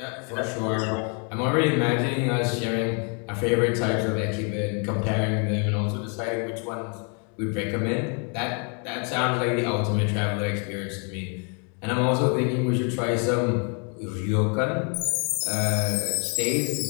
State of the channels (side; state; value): right; quieter; 38.4 dB